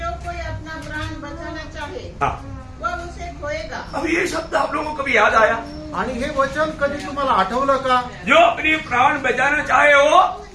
कोई अपना प्राण बचाना चाहे हाँ, वह उसे खोएगा। अब ये शब्द आप लोगों को कभी याद आया? आणि हे वचन कधी तुम्हाला आठवलं का? जो अपनी प्राण बचाना चाहे वो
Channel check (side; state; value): both; identical; correlation 1.00